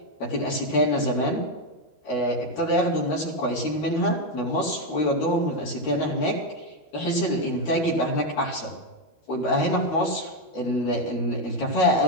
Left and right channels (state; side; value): late; right; 13 ms